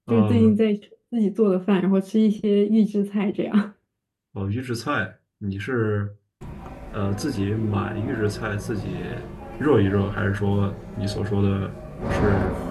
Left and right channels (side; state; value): both; identical; correlation 1.00